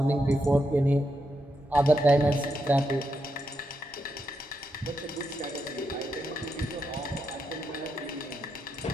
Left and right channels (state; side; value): normal; both; correlation 0.83